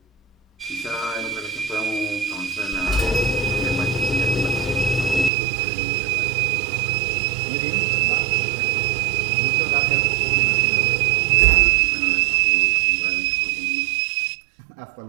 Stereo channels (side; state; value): left; drops out; at 5.3 s